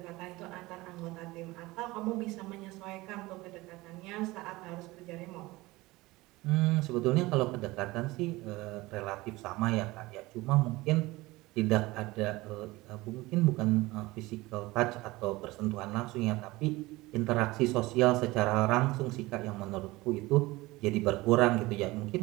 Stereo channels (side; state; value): left; quieter; 20.5 dB